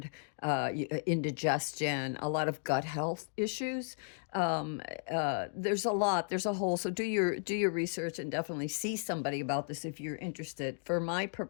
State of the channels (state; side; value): silent; right; digital silence